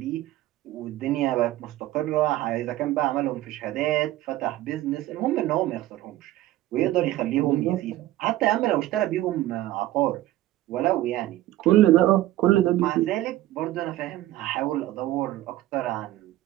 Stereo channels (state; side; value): quieter; left; 15.2 dB